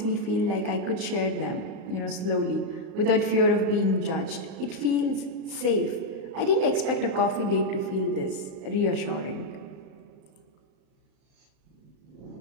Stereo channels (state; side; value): late; left; 38 ms